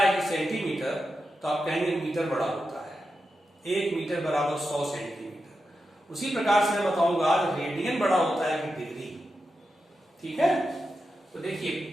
कि सेंटीमीटर, तो आप कहेंगे मीटर बड़ा होता है, 1 मीटर बराबर 100 सेंटीमीटर। उसी प्रकार से मैं बताऊंगा रेडियन बड़ा होता है कि डिग्री। ठीक है, तो देखिए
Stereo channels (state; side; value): normal; both; correlation 0.89